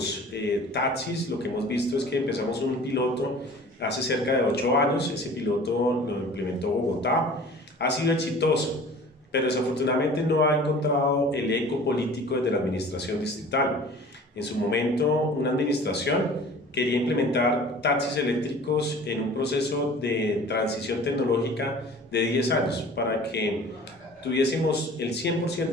taxis, lo que hemos visto es que empezamos un piloto hace cerca de 8 años, ese piloto lo implementó Bogotá, ha sido exitoso, pero desafortunadamente no ha encontrado el eco político desde la administración distrital. En su momento, una administración quería implementar taxis eléctricos en un proceso de transición tecnológica de 10 años para que tuviésemos el 100%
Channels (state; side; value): normal; both; correlation 0.45